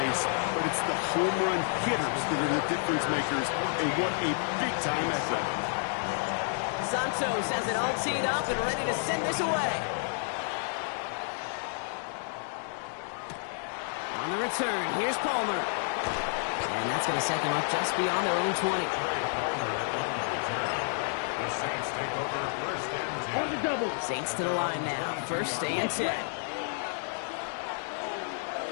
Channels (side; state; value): right; silent; 58 dB below the other